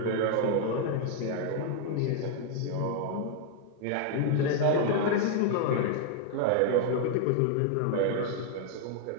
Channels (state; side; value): different; both; correlation 0.00